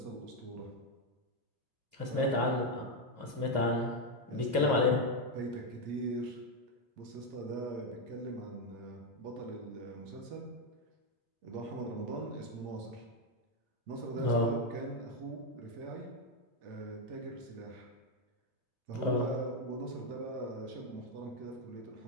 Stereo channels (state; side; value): late; left; 2.6 ms